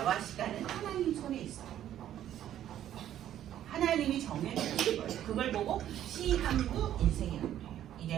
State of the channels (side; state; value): left; quieter; 11.5 dB